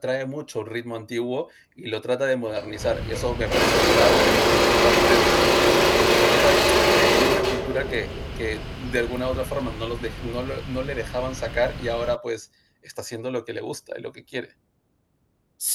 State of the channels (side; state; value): both; identical; correlation 1.00